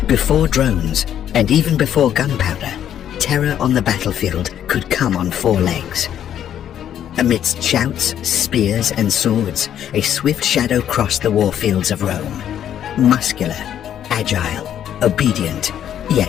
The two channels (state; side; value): quieter; right; 10.1 dB